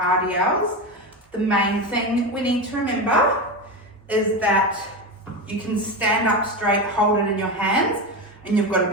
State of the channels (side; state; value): both; normal; correlation 0.19